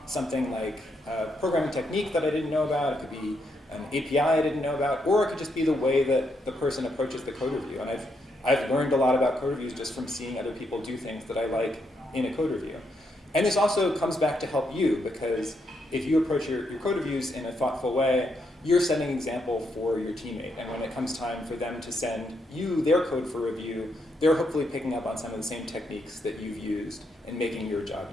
something like a programming technique that I didn't know about. It could be an API I didn't know about, or it could just be the way that the person approaches the code review. And I've learned a lot about code reviews just from seeing other people do things that I like in a code review. And this also comes back to help you, because if you approach your code reviews in a thoughtful way, you're setting an example for your teammate. And when it comes time for them to send you their code for review, they're hopefully picking up on some of the same techniques that you've used and making your job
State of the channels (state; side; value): normal; both; correlation 0.78